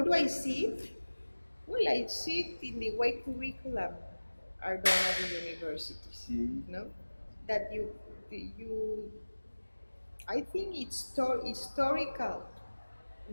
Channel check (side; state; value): both; inverted; correlation -1.00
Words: do I see it? Well, I see it in the way curriculum are done at the universities. No, that you I think it's historical